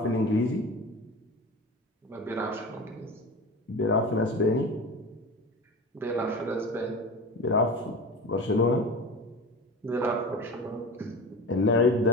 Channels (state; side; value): normal; both; correlation 0.31